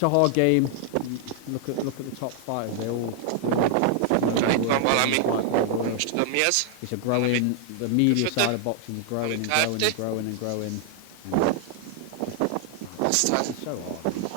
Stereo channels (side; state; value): both; different; correlation 0.00